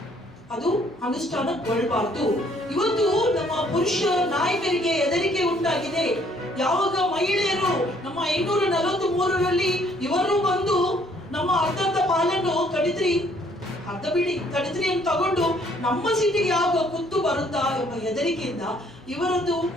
ಅದು ಅನುಷ್ಠಾನಗೊಳ್ಳಬಾರದು. ಇವತ್ತು ನಮ್ಮ ಪುರುಷ ನಾಯಕರಿಗೆ ಹೆದರಿಕೆ ಉಂಟಾಗಿದೆ. ಯಾವಾಗ ಮಹಿಳೆಯರು ನಮ್ಮ 543ರಲ್ಲಿ ಇವರು ಬಂದು ನಮ್ಮ ಅರ್ಧ ಪಾಲನ್ನು ಕಡಿದ್ರಿ, ಅರ್ಧ ಬಿಡಿ ಕಡಿದ್ರಿ ಅಂತ ತಗೊಂಡು ನಮ್ಮ ಸೀಟಿಗೆ ಯಾವಾಗ ಕುತ್ತು ಬರುತ್ತಾ ಎಂಬ ಹೆದರಿಕೆಯಿಂದ ಇವರದ್ದು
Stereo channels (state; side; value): normal; both; correlation 0.63